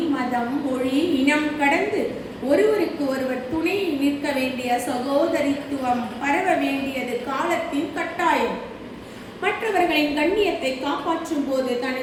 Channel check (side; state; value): both; identical; correlation 1.00